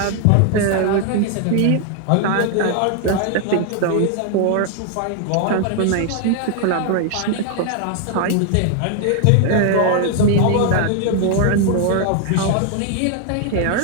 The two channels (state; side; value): different; both; correlation 0.00